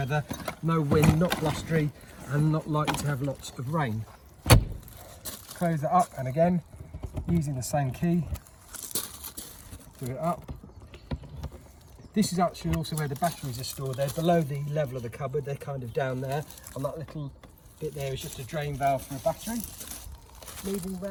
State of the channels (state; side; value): identical; both; correlation 1.00